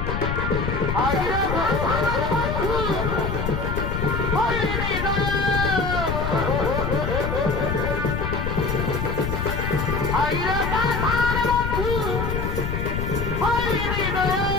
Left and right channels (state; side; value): noise; left; rumble, 2 dB below the sound